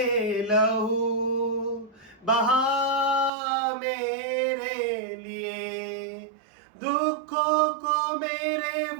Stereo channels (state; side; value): drops out; left; at 3.3 s